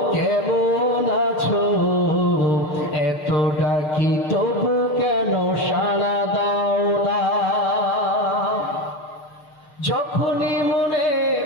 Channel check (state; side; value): late; right; 6.5 ms